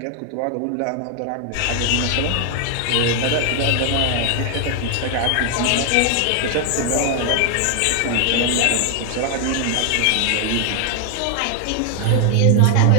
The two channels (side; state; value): both; different; correlation 0.00